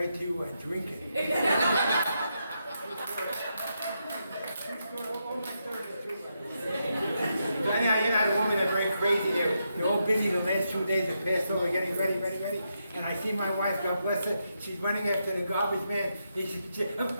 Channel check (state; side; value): inverted; both; correlation -0.83